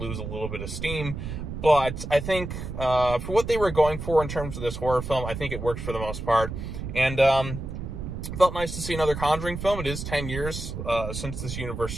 a little bit of steam. But I think, for what they were going for in terms of this horror film, I think it worked for the most part. And, felt nice to see another Conjuring film. It is 10 years, since this universe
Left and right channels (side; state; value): right; noise; rumble, 7 dB below the sound